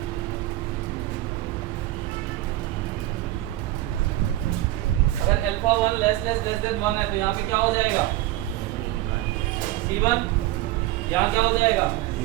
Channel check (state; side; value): quieter; left; 15.9 dB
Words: अगर अल्फा 1 लेस देन 1 है तो यहाँ पे क्या हो जाएगा? C1। यहाँ क्या हो जाएगा?